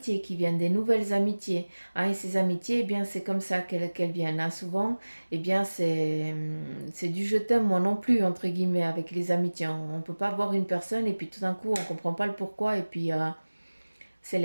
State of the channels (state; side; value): inverted; both; correlation -1.00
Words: qui viennent, des nouvelles amitiés. Hein, et ces amitiés, eh bien, c'est comme ça qu'elles viennent. Hein. Souvent, eh bien, c'est du je t'aime, moi non plus, entre guillemets, avec les amitiés. On ne peut pas voir une personne et puis tout d'un coup, on ne comprend pas le pourquoi et puis c'est